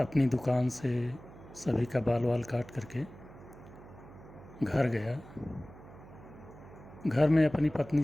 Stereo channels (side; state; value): right; noise; hum, 19 dB below the sound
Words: दुकान से सभी का बाल वाल काट करके घर गया। घर में अपनी पत्नी